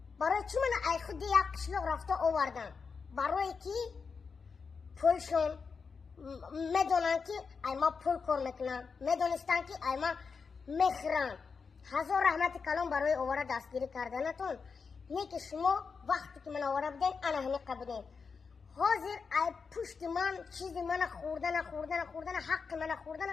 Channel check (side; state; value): right; quieter; 5.3 dB